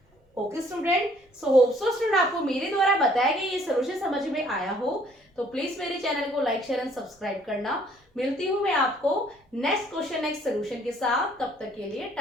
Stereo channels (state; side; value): normal; both; correlation 0.61